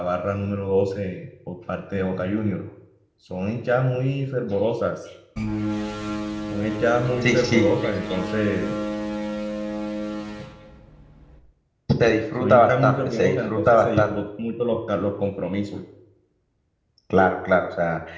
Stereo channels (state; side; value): identical; both; correlation 1.00